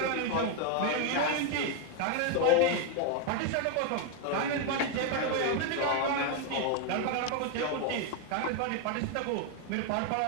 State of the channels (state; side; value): different; both; correlation 0.01